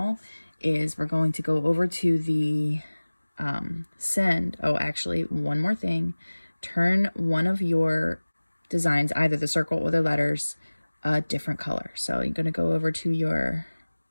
is we're going to go over to the send. Oh, actually, one more thing. Turn one of your designs, either the circle or the letters, a different color. So you're going to go over to your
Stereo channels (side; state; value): both; inverted; correlation -1.00